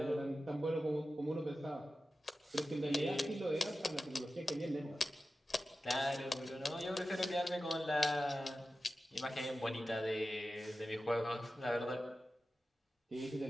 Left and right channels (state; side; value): normal; both; correlation 0.94